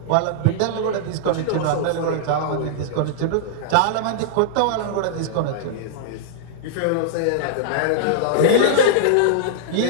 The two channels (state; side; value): different; both; correlation -0.01